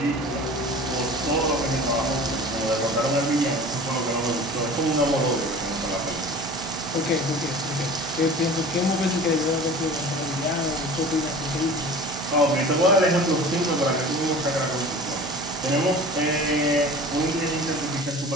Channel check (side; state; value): both; normal; correlation 0.40